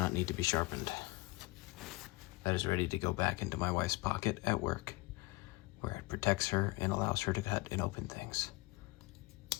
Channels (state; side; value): quieter; right; 21.6 dB